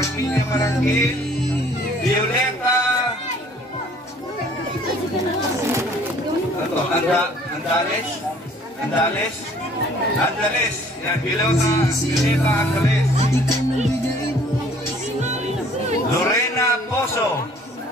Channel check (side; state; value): both; normal; correlation 0.56